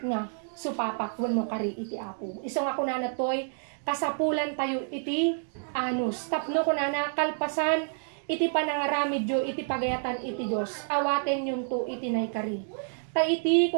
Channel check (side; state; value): left; silent; digital silence